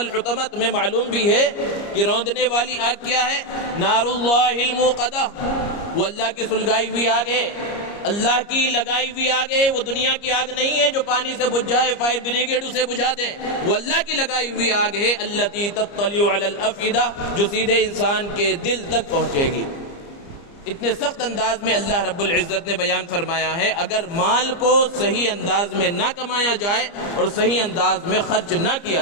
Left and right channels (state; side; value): late; right; 30 ms